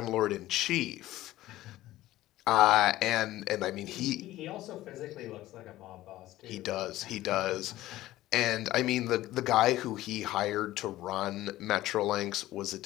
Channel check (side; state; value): right; quieter; 15.7 dB